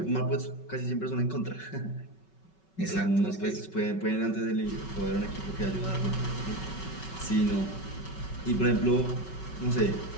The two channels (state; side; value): late; right; 5.3 ms